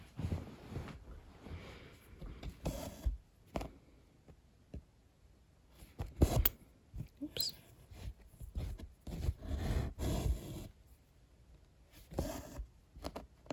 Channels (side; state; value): both; identical; correlation 1.00